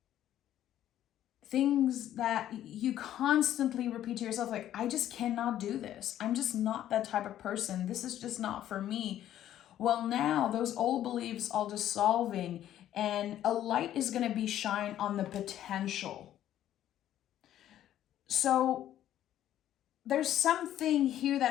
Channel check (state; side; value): quieter; right; 11.9 dB